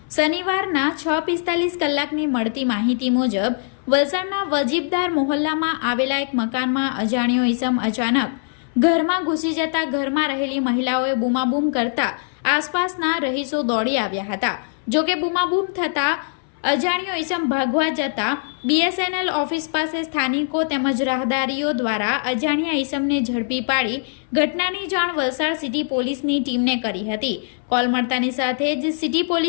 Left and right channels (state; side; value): silent; right; 61 dB below the other